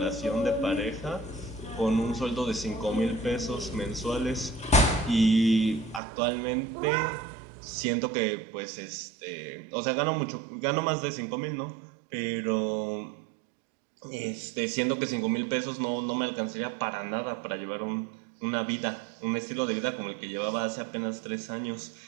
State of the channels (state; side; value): drops out; left; at 6.0 s